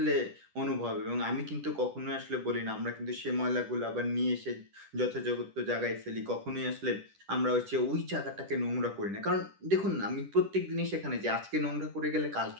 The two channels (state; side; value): late; left; 10 ms